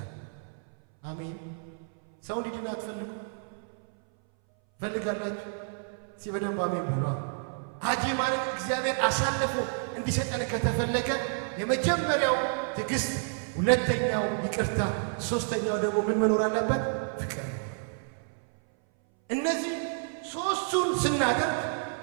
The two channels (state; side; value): silent; left; 58 dB below the other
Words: አሜን። ሰው እንዲድን አትፈልጉ? ፈልጋላችሁ? በደንብ አሜን በሉ። አጅማንን እግዚአብሔር አሳልፎ እንዲሰጠን ከተፈለገ የመጀመሪያው ትዕግስት፣ ሁለተኛው ይቅርታ፣ ሶስተኛው ደግሞ ምን መኖር አለበት? ፍቅር። እነዚህ ሶስቱን ስናደርግ